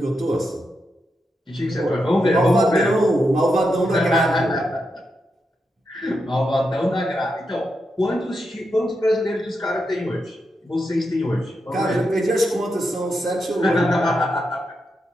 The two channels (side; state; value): both; normal; correlation 0.85